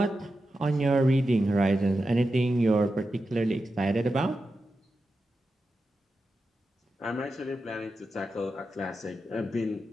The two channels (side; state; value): both; normal; correlation 0.90